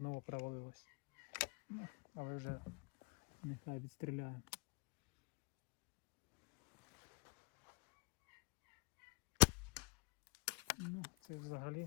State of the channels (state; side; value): quieter; right; 28.1 dB